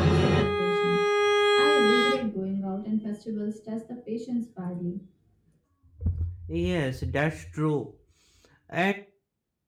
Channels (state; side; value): identical; both; correlation 1.00